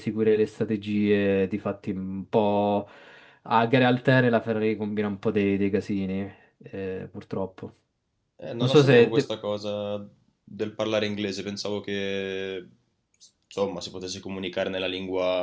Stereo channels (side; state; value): both; identical; correlation 1.00